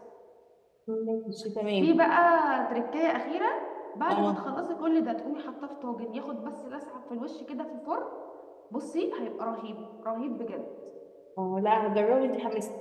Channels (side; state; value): both; identical; correlation 1.00